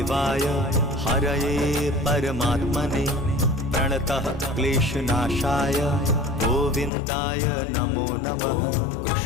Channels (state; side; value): drops out; right; at 6.9 s